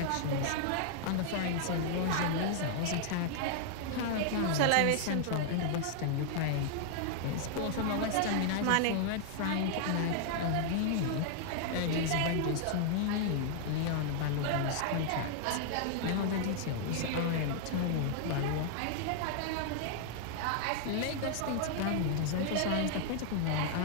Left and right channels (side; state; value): both; different; correlation -0.01